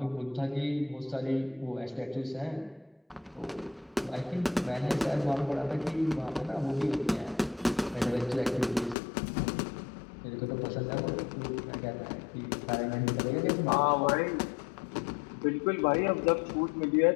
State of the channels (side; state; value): right; drops out; at 9.0 s